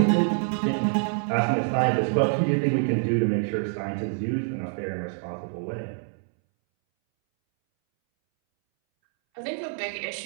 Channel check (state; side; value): silent; left; 61 dB below the other